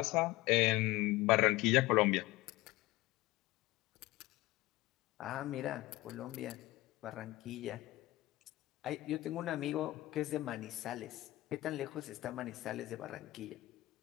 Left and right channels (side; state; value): right; quieter; 18.6 dB